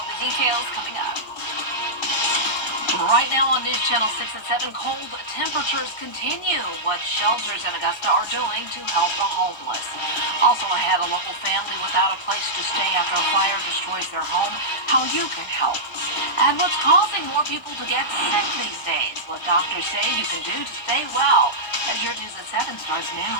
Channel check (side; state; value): right; late; 1.3 ms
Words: the details coming up. Right now on News Channel 6 at 7, cold temperatures continue. What shelters in Augusta are doing to help the homeless. Also ahead, a local family without a place to stay after a fire destroys their home. How you can help. And what's causing more people to get sick these days. What doctors say you can do to stay well. As your News at 7 starts now.